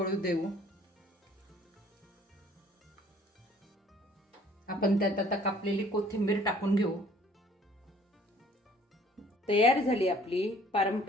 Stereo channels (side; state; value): both; normal; correlation 0.56